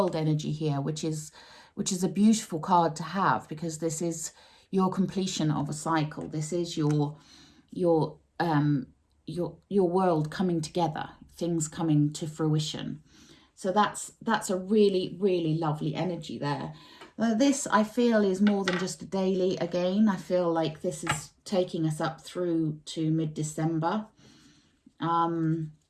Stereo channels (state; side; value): identical; both; correlation 1.00